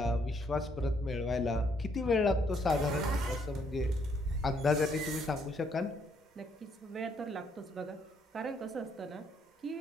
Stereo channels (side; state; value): both; normal; correlation 0.70